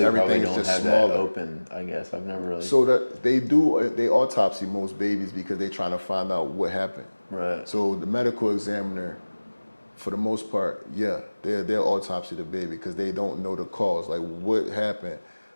probably is don't just have smaller. that open. I guess I've never really. So that they autopsy most babies because they're trying to find out what happened. Right. So the medical examiner, for the most part, yeah, they'll autopsy the baby because they don't know the cause, like what happened.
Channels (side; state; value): both; inverted; correlation -1.00